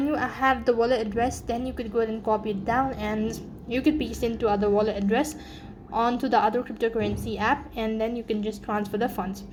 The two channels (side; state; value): both; identical; correlation 1.00